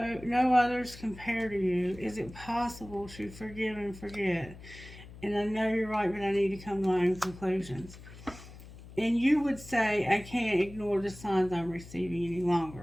others compare to you. Is it possible to forgive and forget? And I know you're right, but I need to come to my own conclusions. And you would say, I can't ignore the signs I'm receiving any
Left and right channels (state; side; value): noise; left; hum, 17 dB below the sound